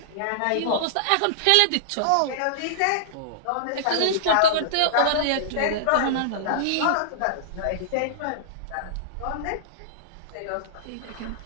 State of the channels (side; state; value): both; different; correlation -0.02